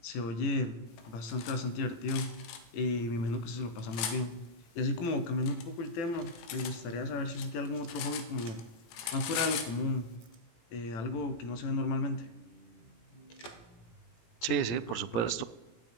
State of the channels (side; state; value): right; late; 18 ms